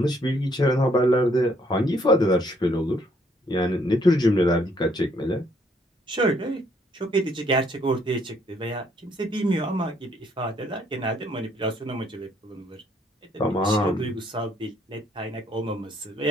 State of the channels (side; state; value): both; normal; correlation 0.67